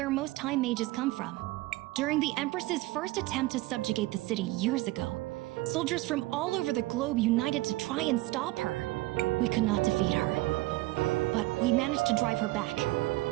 most Time Mages come from. During the Empress's first attempt to subjugate the city years ago, soldiers from all over the globe united to try and stop her. We could not defeat her, but we managed to drive her back.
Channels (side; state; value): left; quieter; 19.6 dB